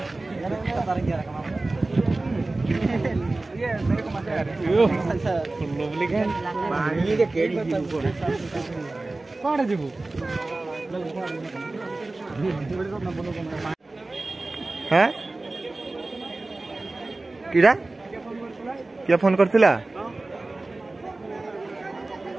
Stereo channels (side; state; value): left; quieter; 3.1 dB